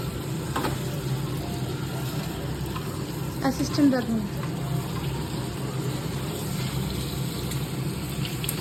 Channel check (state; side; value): identical; both; correlation 1.00